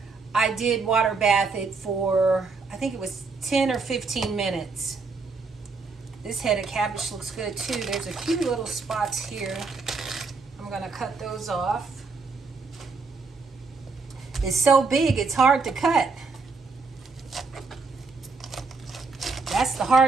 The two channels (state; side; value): quieter; left; 4.3 dB